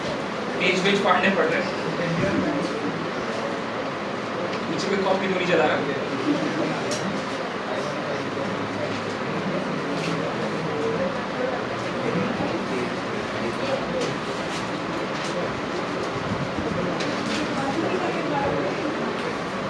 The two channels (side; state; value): both; identical; correlation 1.00